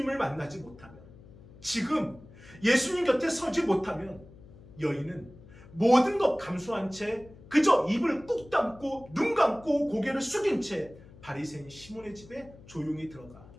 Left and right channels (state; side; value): noise; left; hum, 21 dB below the sound